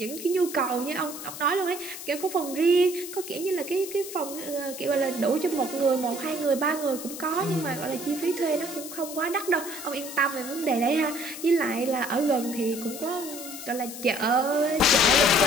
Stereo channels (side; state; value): left; noise; hiss, 10 dB below the sound